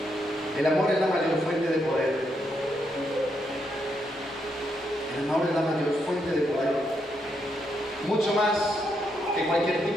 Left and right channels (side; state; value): both; normal; correlation 0.79